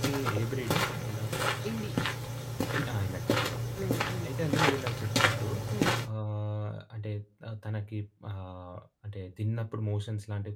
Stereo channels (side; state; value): both; identical; correlation 1.00